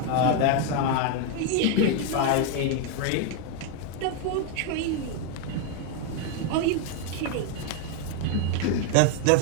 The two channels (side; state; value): both; different; correlation 0.01